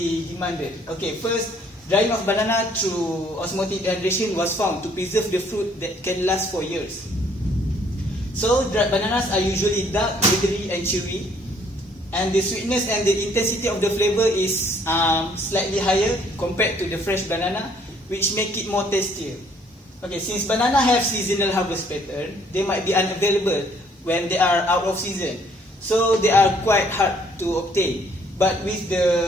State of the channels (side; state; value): both; normal; correlation 0.63